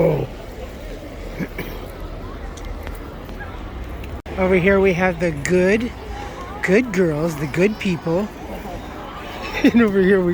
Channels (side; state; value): both; identical; correlation 1.00